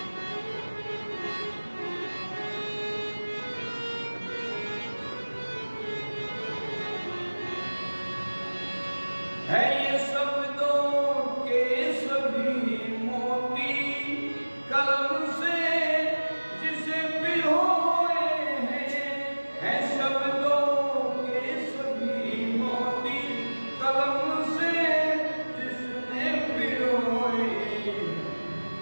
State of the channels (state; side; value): inverted; both; correlation -1.00